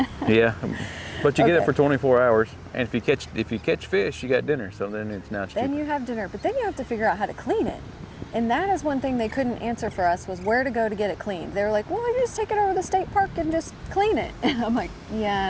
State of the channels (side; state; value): both; identical; correlation 1.00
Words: Yeah, but you get it for 24 hours, and if you catch fish, you got dinner. So then it's now cheaper. Then you have dinner, but then you have to figure out how to clean it. And that is one thing they couldn't answer for us, was where to go to get it cleaned. They were like, well, you just take it over to the state park and just clean it. And I'm like,